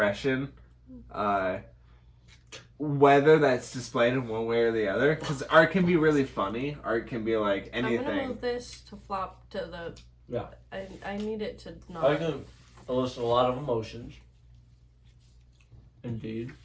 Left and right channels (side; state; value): both; identical; correlation 1.00